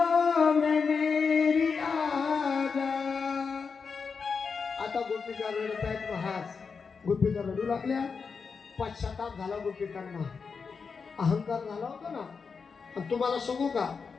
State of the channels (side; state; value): right; quieter; 5.4 dB